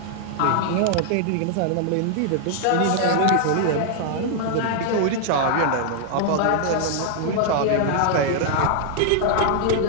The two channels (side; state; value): both; different; correlation 0.00